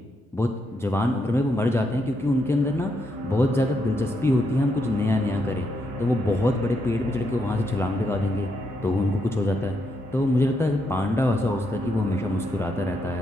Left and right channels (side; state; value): both; normal; correlation 0.79